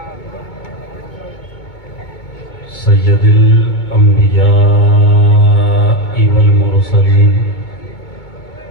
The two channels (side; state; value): right; late; 2.2 ms